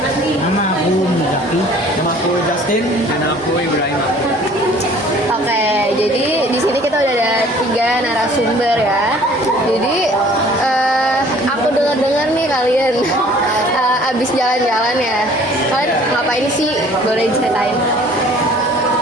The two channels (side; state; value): both; normal; correlation 0.52